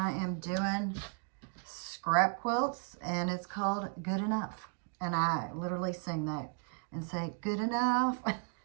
am doing scrap quilts, and it's called Good Enough. And I literally sing that and say, good enough,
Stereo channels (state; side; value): quieter; left; 38.8 dB